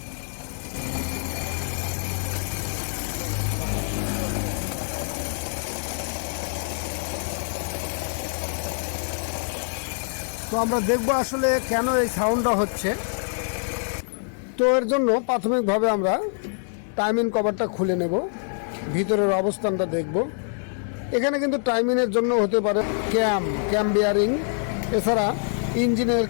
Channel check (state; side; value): silent; right; digital silence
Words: তো আমরা দেখব আসলে কেন এই সাউন্ডটা হচ্ছে। তো এর জন্য প্রাথমিকভাবে আমরা টাইমিং কভারটা খুলে নেব, ভিতরের অবস্থানটা দেখব। এখানে কিন্তু টাইমিংয়ের জন্য হতে পারে ক্যাম বিয়ারিং, এছাড়া ইঞ্জিনের